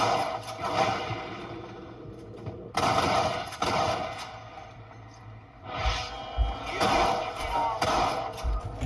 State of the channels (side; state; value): both; identical; correlation 1.00